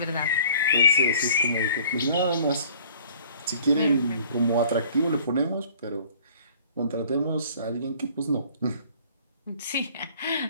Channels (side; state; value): both; inverted; correlation -0.54